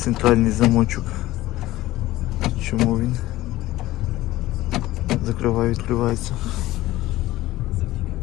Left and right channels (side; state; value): right; quieter; 16.6 dB